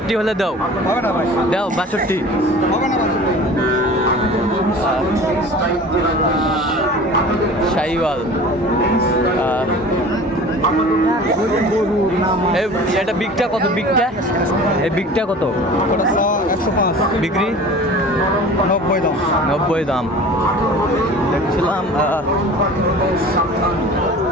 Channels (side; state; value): both; normal; correlation 0.41